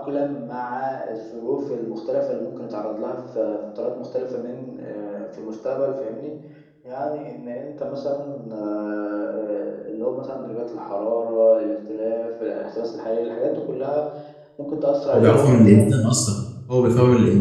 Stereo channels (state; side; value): identical; both; correlation 1.00